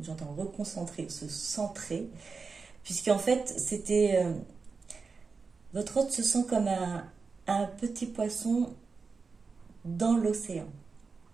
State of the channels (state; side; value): quieter; left; 4.7 dB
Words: reconcentrer, se centrer, puisqu'en fait, votre hôte se sent comme un petit poisson dans l'océan,